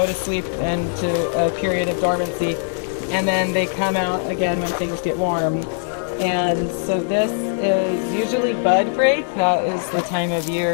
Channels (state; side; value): silent; right; digital silence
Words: to sleep and to a period of dormancy, and then they come out again when things get warm. And so this is usually bud break. That is the time of